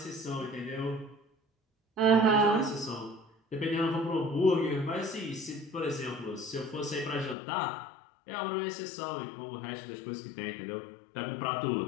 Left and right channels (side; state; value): right; drops out; at 7.4 s